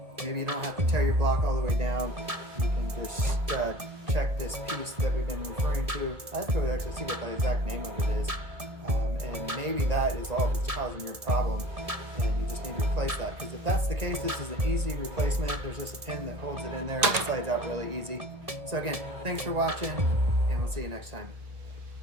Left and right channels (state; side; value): late; left; 1.7 ms